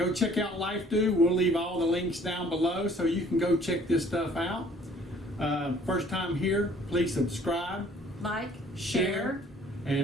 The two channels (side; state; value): both; normal; correlation 0.56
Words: check out Lifedoo. We'll leave all the links down below so you can go check this stuff out. First time here, please subscribe, Like, share, share,